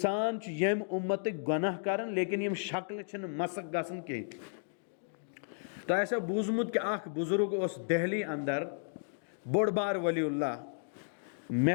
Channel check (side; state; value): right; silent; digital silence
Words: یم امت گناہ کرن لیکن یم شکل چھن مسک گژھن کی۔ تو ایسا بوزمت کہ اخ بزرگ اس دہلی اندر بوڑ بار ولی اللہ، مے